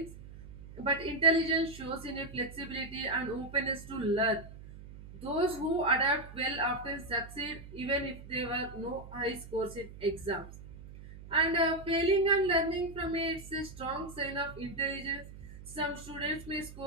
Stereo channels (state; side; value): noise; right; hum, 15 dB below the sound